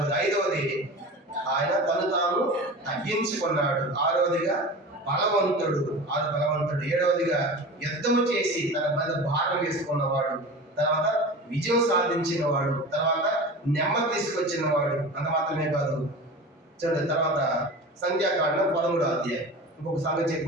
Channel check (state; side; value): normal; both; correlation 0.33